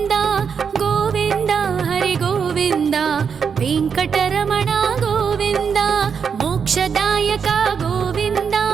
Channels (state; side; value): quieter; left; 6.5 dB